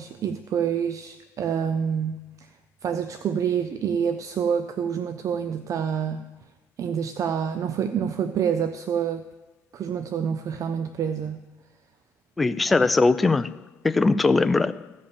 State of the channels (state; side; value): normal; both; correlation 0.75